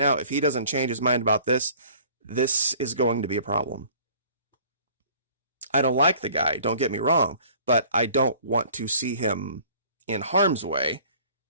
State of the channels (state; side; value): inverted; both; correlation -0.52